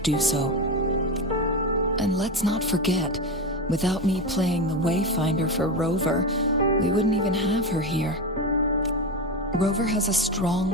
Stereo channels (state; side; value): normal; both; correlation 0.18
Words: so. And let's not forget, without me playing the Wayfinder for Rover, we wouldn't even have her here. Rover has a